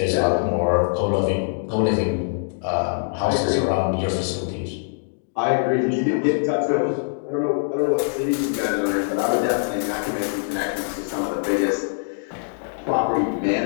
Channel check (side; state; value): right; silent; digital silence